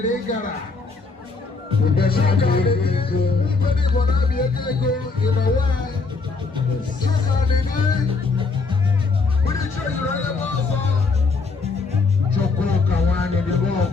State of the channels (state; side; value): quieter; right; 4.2 dB